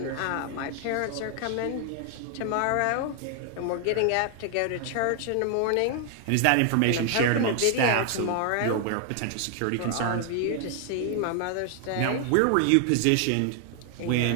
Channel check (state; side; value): different; both; correlation 0.00